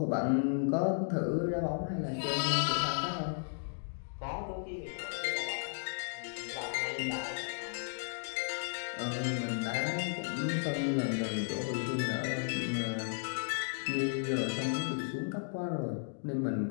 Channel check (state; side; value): silent; right; digital silence